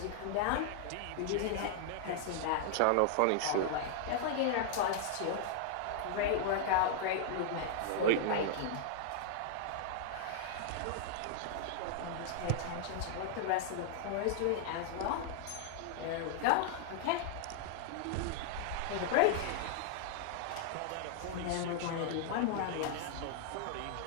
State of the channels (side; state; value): both; different; correlation -0.01